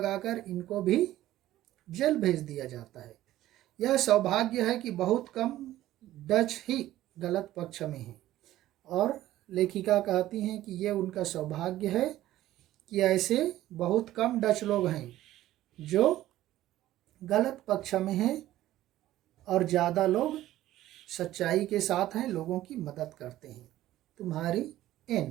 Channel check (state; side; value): quieter; left; 14.5 dB